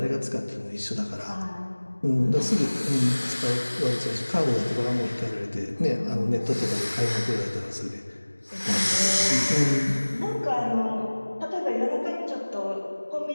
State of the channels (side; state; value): both; inverted; correlation -1.00